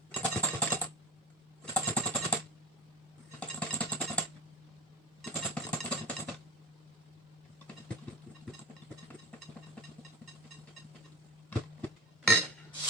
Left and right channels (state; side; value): normal; both; correlation 0.26